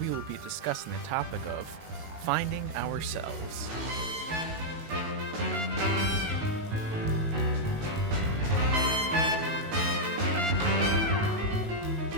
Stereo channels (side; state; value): left; late; 19 ms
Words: will be discussing the topic of finding ourselves.